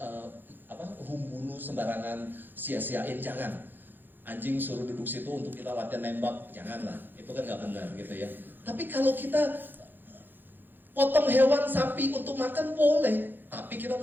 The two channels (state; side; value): late; left; 0.092 ms